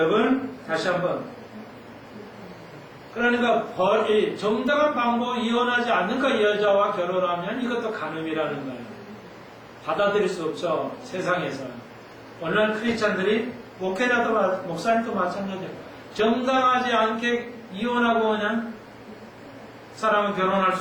다시 한번 그러니까 정당한 방법으로 이혼하지 않는 그 여자와 결혼하면 이것도 간음이라는 거예요. 받아들일 수 없죠. 세상에서. 오늘날 크리스찬들이 목회자도 목사님도 마찬가지예요. 정당하지 않게 이혼하고 그냥 사람은 결혼할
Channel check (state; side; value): identical; both; correlation 1.00